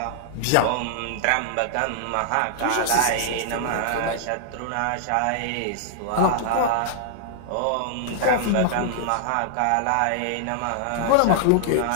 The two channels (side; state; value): both; different; correlation -0.01